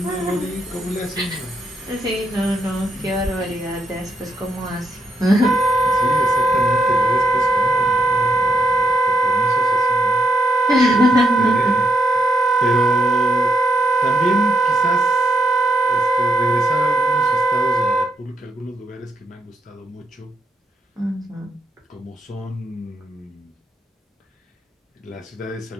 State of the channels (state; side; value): normal; both; correlation 0.79